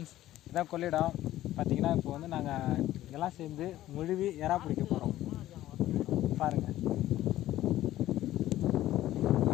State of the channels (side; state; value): right; quieter; 14.3 dB